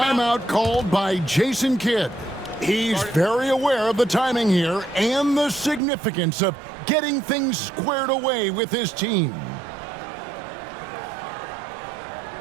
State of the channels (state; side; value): drops out; left; at 5.8 s